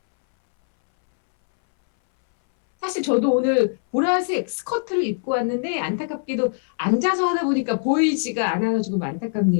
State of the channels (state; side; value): silent; right; 63 dB below the other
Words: 사실 저도 오늘 보라색 스커트를 입고 왔는데 안타깝게도 앉아서 하다 보니까 보이지가 않아서 조금